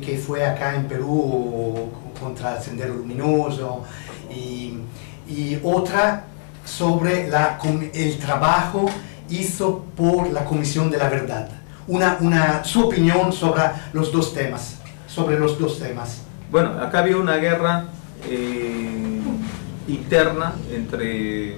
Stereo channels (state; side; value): silent; right; 64 dB below the other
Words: fue acá en Perú contra el Sendero Luminoso, y otra sobre el trabajo hizo por la Comisión de la Verdad. Su opinión sobre los dos temas. Bueno, acá había una guerra interna entre